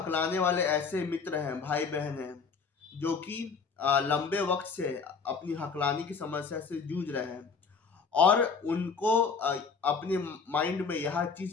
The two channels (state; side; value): quieter; right; 5.4 dB